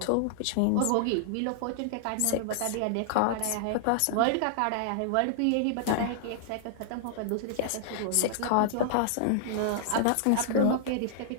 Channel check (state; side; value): different; both; correlation -0.01